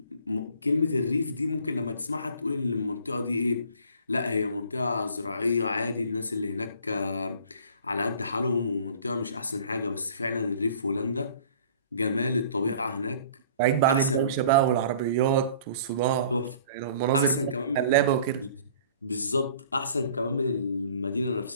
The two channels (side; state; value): both; inverted; correlation -0.50